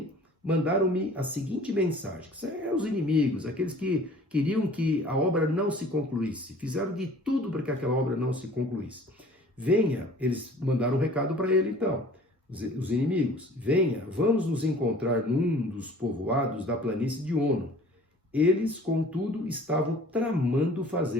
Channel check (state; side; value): normal; both; correlation 0.49